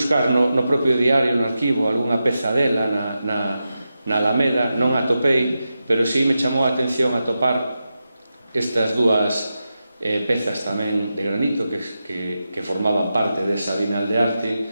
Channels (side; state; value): both; inverted; correlation -0.90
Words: no propio diario, no arquivo, algunha peza dela na Alameda, non a atopei, pero sí me chamou a atención atopar estas dúas pezas tamén de granito que formaban parte desa Bienal de Arte.